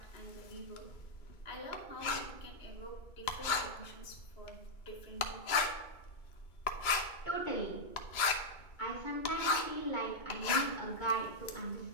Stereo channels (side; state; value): right; late; 2.2 ms